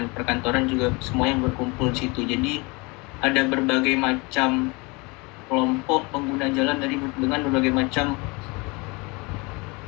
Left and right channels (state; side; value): quieter; right; 26.9 dB